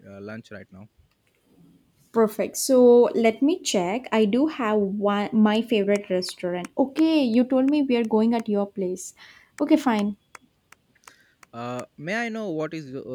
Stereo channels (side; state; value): both; identical; correlation 1.00